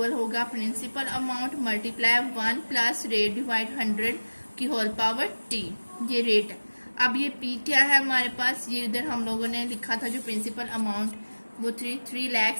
होगा principal amount multiply 1 plus rate divide 100 की होल पावर टी, ये रेट है। अब ये पी क्या है हमारे पास, ये इधर हम लोगों ने लिखा था जो प्रिंसिपल अमाउंट वो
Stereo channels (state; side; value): inverted; both; correlation -1.00